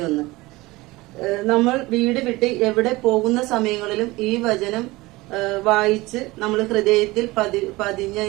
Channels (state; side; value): quieter; left; 20.9 dB